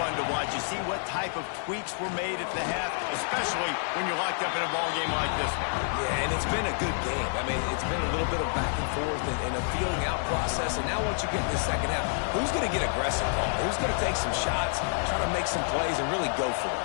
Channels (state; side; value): silent; right; 59 dB below the other